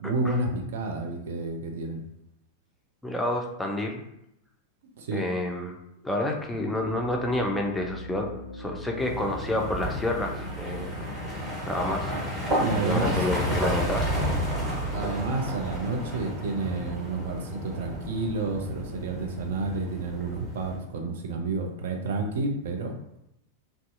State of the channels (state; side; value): normal; both; correlation 0.12